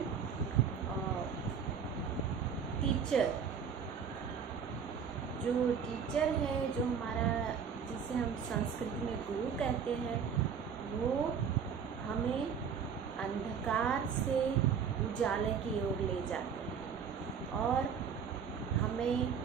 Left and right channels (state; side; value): quieter; left; 6.9 dB